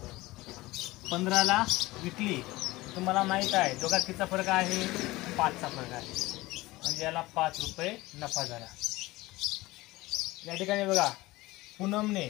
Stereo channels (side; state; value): right; quieter; 19.6 dB